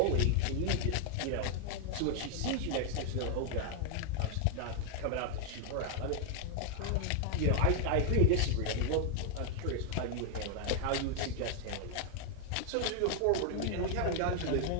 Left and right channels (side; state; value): both; different; correlation 0.00